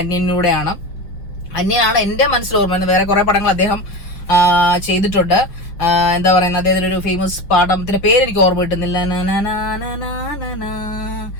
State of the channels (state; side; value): late; right; 5.5 ms